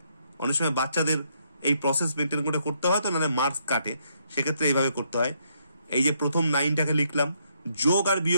অনেক সময় বাচ্চাদের এই প্রসেস মেনটেন করে করতে হয়, তো নাহলে মার্কস কাটে, সেক্ষেত্রে এইভাবে করতে হয়। এই যে প্রথম 9টাকে লিখলাম, যোগ আর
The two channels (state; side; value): inverted; both; correlation -0.73